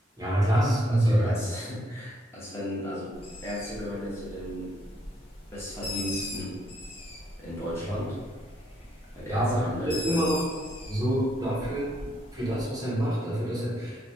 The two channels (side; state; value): both; normal; correlation 0.73